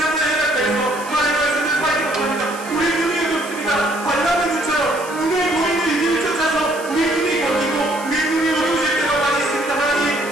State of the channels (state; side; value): noise; right; hiss, 16 dB below the sound